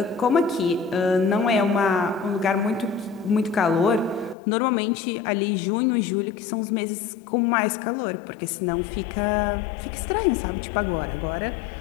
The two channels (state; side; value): drops out; right; at 4.4 s